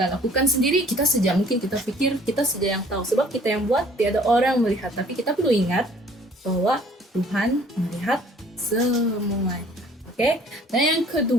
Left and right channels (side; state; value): both; normal; correlation 0.55